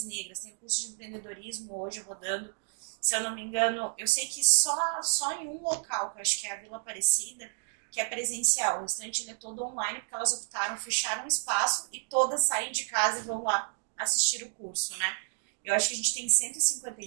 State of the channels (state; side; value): silent; left; 57 dB below the other